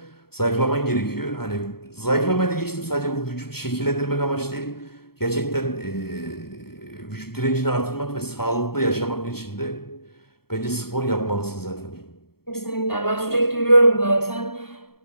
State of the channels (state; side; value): late; right; 0.95 ms